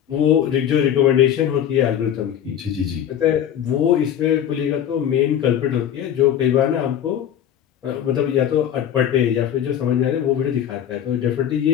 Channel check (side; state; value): right; quieter; 9.8 dB